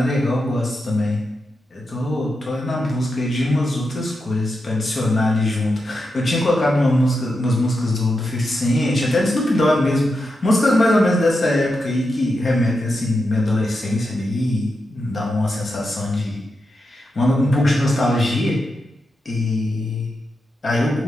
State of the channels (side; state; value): both; normal; correlation 0.87